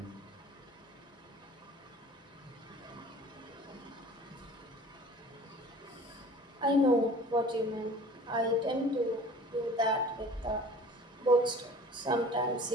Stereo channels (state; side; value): normal; both; correlation 0.45